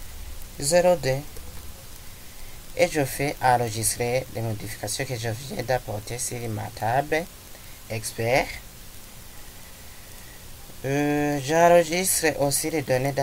02 et je fais enregistrer les modifications que je viens d'apporter sur ma table expert. J'enregistre aussi les données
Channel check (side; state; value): both; identical; correlation 1.00